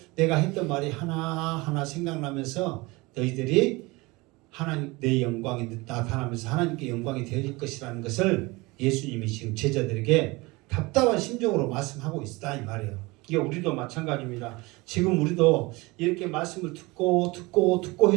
내가 했던 말이 하나하나 생각나면서 너희들이 하나님 내 영광이 나타나면서 하나님께 영광이 되어질 것이라는 것을 예수님이 지금 제자들에게 답답한 심정으로 말씀하고 있다 이 말이에요. 이게 우리도 마찬가지입니다. 지금 우리도 이렇게 말씀을 듣고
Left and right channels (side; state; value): left; quieter; 23.4 dB